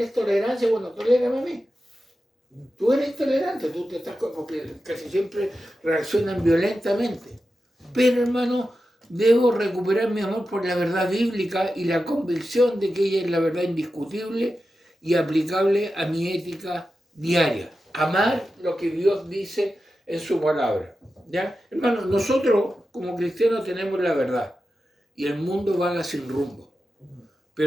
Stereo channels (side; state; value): both; normal; correlation 0.91